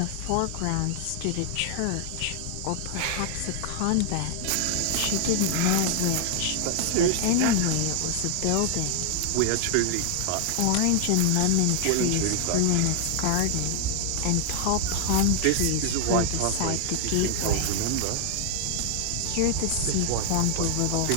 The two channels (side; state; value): both; different; correlation 0.00